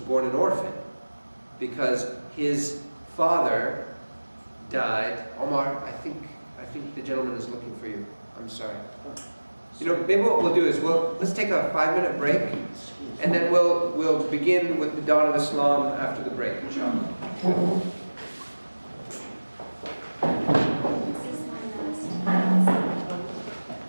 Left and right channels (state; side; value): inverted; both; correlation -1.00